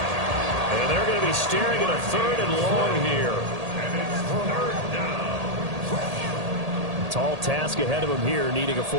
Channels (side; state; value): left; late; 1.8 ms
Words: And they're going to be staring at a 3rd and long here. Tall task ahead of him here, needing a